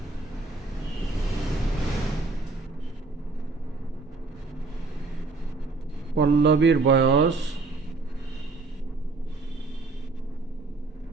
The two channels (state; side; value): quieter; left; 3.6 dB